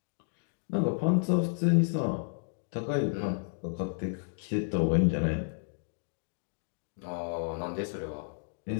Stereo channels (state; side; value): silent; right; digital silence